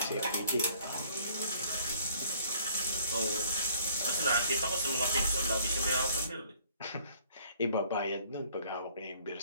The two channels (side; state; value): both; inverted; correlation -0.57